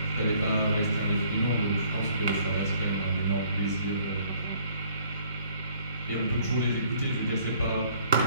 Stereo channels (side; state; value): both; inverted; correlation -0.60